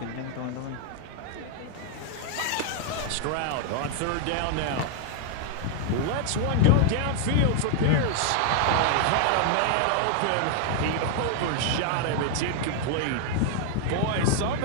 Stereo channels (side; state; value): both; different; correlation 0.00